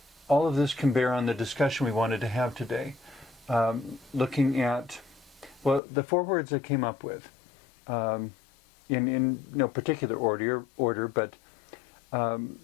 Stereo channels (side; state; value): right; drops out; at 5.8 s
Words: of this can bear on the discussion we wanted to have today. Looking at, well, the four words I came up with, in no particular order, but